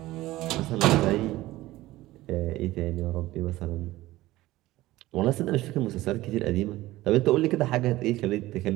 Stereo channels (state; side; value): quieter; left; 17.2 dB